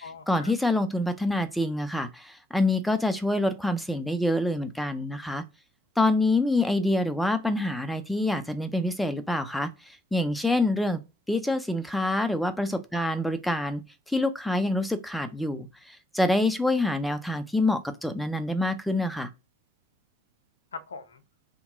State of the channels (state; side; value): normal; both; correlation 0.81